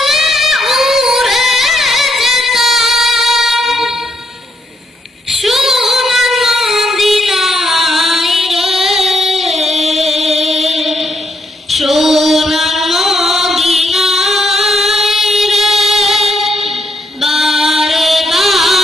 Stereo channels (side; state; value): both; normal; correlation 0.75